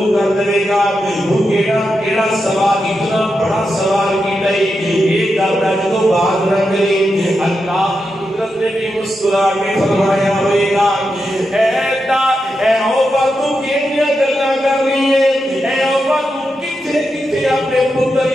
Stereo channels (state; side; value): normal; both; correlation 0.87